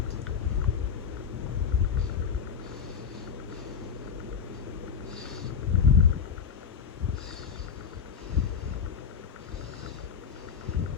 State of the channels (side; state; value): right; quieter; 7.0 dB